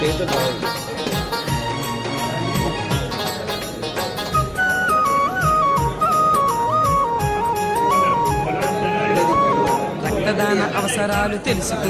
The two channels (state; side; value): identical; both; correlation 1.00